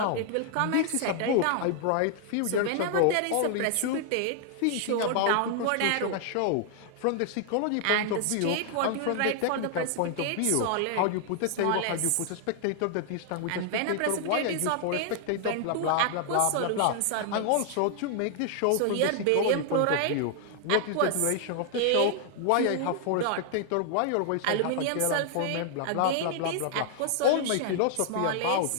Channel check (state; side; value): different; both; correlation 0.00